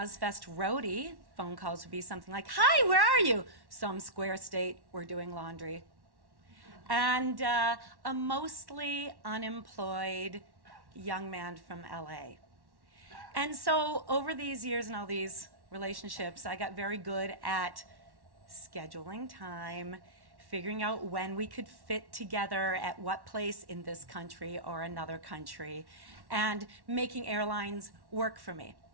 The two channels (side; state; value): left; late; 1.1 ms